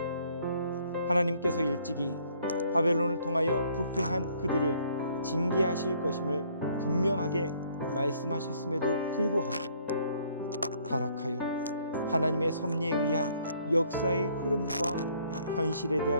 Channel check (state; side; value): inverted; both; correlation -0.63